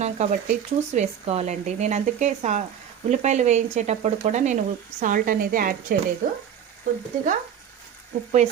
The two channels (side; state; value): left; quieter; 8.9 dB